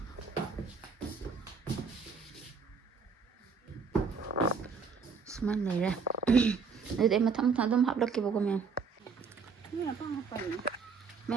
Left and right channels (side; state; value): left; quieter; 5.3 dB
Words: ꯁꯨꯃꯥꯏꯅ ꯂꯩꯔꯦ ꯑꯗꯨꯗꯤ ꯑꯩ ꯃꯊꯪ ꯑꯗꯨꯝ ꯍꯥꯞꯂꯛꯀꯦꯕꯀꯣ ꯃꯌꯥꯝ